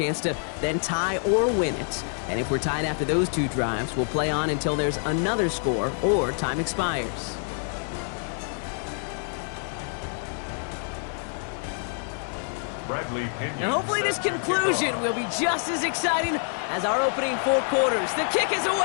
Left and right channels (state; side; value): silent; right; 55 dB below the other